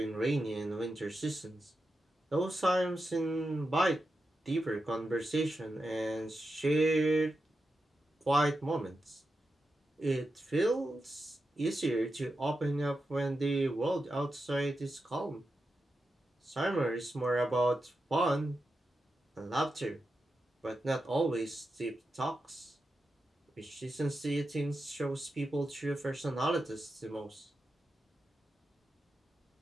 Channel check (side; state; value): both; normal; correlation 0.89